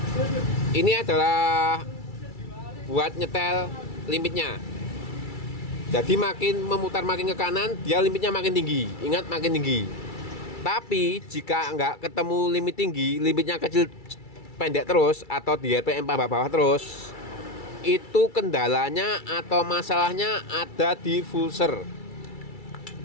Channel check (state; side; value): late; right; 2.3 ms